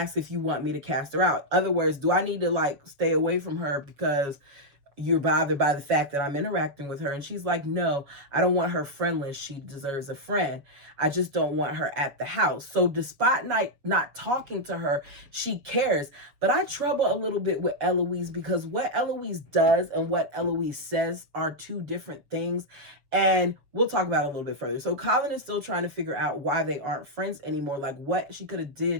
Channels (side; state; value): left; late; 7.1 ms